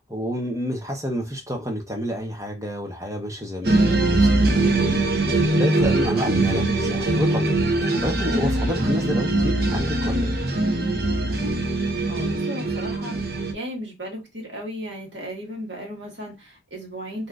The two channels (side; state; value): both; normal; correlation 0.71